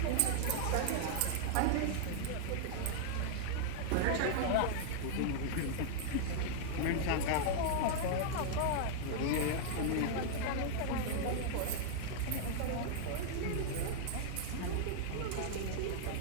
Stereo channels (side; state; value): both; different; correlation -0.01